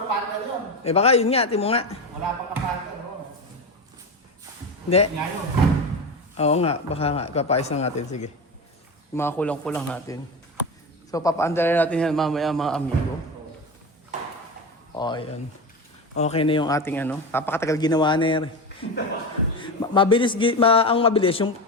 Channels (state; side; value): normal; both; correlation 0.22